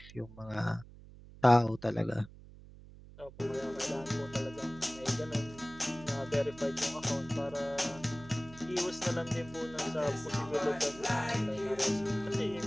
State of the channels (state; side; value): noise; right; hum, 18 dB below the sound